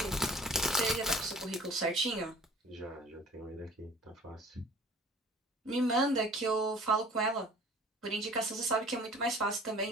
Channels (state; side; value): normal; both; correlation 0.47